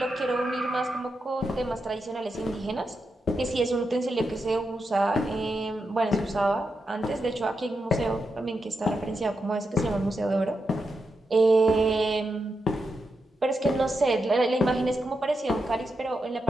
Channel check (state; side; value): normal; both; correlation 0.86